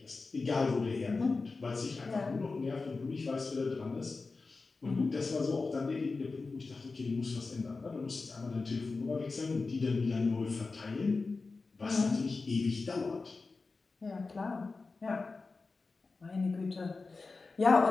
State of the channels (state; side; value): quieter; right; 4.0 dB